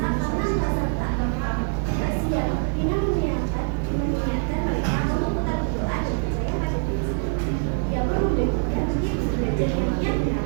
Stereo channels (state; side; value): silent; left; digital silence